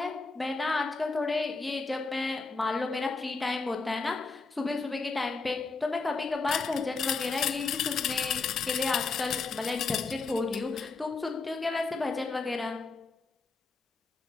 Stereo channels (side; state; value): right; quieter; 4.1 dB